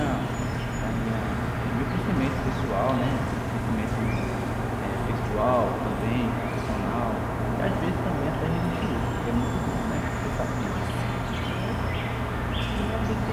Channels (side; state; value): both; identical; correlation 1.00